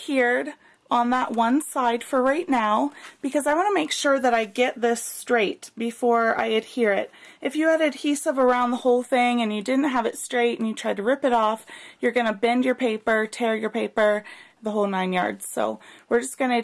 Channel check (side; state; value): both; identical; correlation 1.00